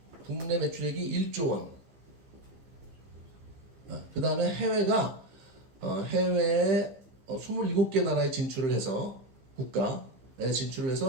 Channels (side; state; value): left; late; 15 ms